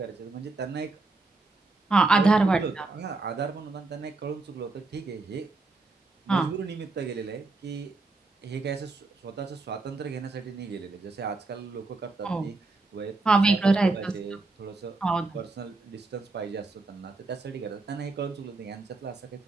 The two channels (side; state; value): left; quieter; 3.5 dB